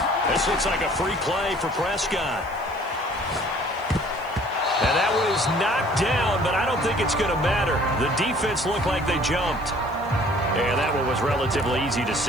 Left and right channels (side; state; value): right; noise; hiss, 26 dB below the sound